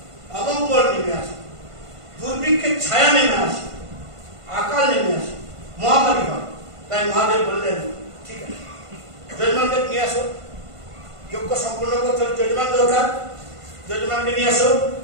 অমঙ্গল নেমে আসে, দুর্ভিক্ষের ছায়া নেমে আসে, আকাল নেমে আসে, মহামারী হয়। তাই মহাদেব বললেন ঠিক আছে যজমানকে নিয়ে আসো, যজ্ঞ সম্পূর্ণ করতে হলে যজমান দরকার, যজমানকে নিয়ে আসো।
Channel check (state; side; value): late; left; 1.5 ms